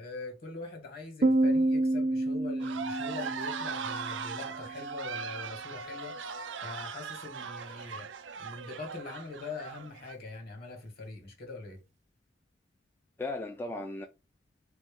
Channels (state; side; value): normal; both; correlation 0.63